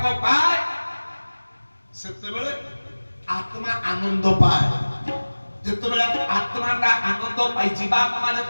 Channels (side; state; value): both; inverted; correlation -1.00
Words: ପାଏ ସେତେବେଳେ ଆତ୍ମା ଆନନ୍ଦ ପାଏ ଯେତେବେଳେ ଆତ୍ମାଟା ଆନନ୍ଦ ପାଇ ଜୀବାତ୍ମା